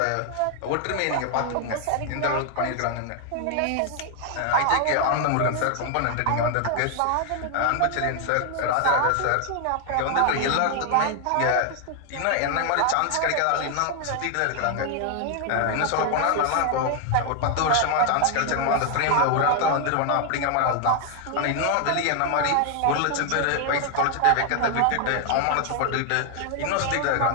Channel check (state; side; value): different; both; correlation 0.00